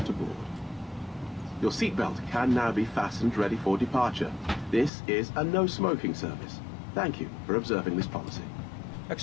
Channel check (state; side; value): drops out; right; at 4.9 s